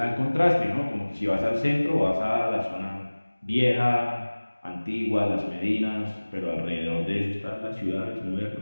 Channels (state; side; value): inverted; both; correlation -1.00